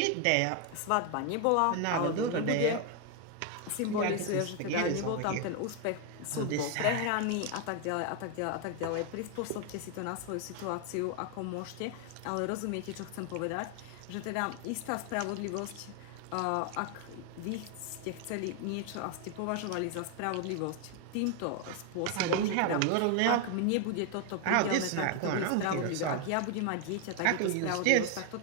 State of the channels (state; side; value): different; both; correlation 0.01